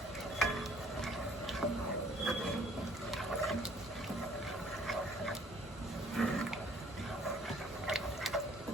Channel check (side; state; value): both; normal; correlation 0.58